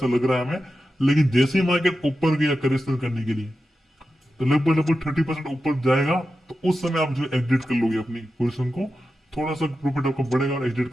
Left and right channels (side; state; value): both; normal; correlation 0.91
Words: लग रहा है हमें। लेकिन जैसे ही मार्केट ऊपर गया करेक्शन करने के लिए, तो लगभग लगभग 30% ऊपर जाएगा, तो उस समय आप जो एग्जिट कर लोगे अपनी पोजिशन को, थोड़ा सा प्रॉफिट आपका बढ़ेगा और एग्जिट